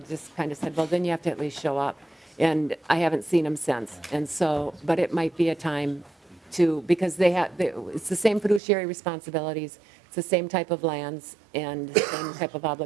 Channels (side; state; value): left; drops out; at 8.6 s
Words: kind of said, well, then you have to at least show up. And I haven't seen them since. And so, but it might be a time to, because it's the same fiduciary responsibilities, it's the same type of lands and the same type of